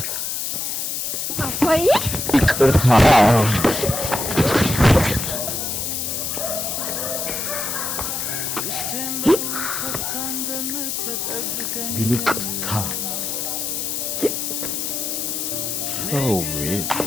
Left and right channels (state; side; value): noise; left; hiss, 2 dB below the sound